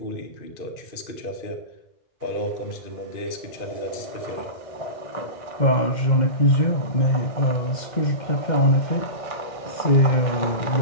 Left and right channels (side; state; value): right; late; 2.1 ms